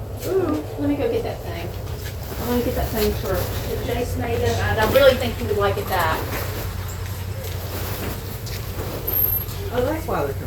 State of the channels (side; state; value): both; identical; correlation 1.00